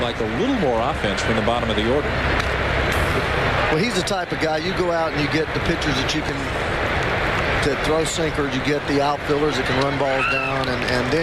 a little more offense from the bottom of the order. Well, he's the type of guy, you go out and you get the pitchers that you can to throw sinkers, you get the outfielders that can run balls down, and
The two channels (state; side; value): identical; both; correlation 1.00